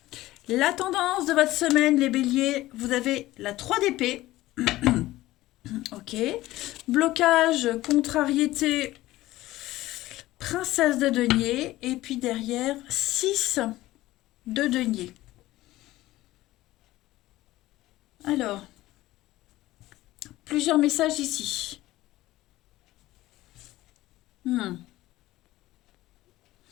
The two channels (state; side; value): quieter; right; 16.7 dB